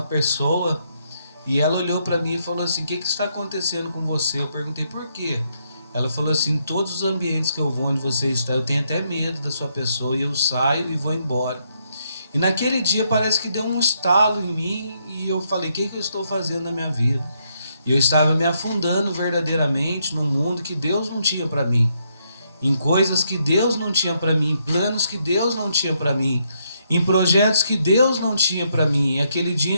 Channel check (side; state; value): both; inverted; correlation -0.76